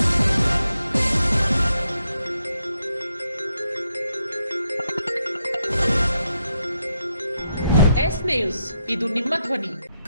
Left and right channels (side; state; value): both; inverted; correlation -0.81